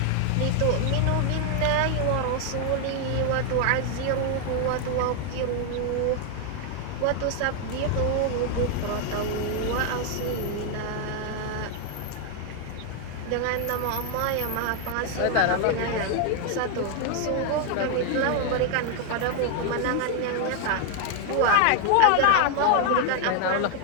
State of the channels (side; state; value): both; different; correlation 0.00